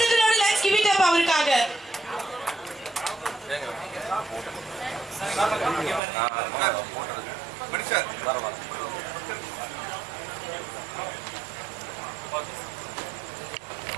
லெட்ஸ் கிவ் இட் அப் அவருக்காக.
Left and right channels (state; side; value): drops out; left; at 6.0 s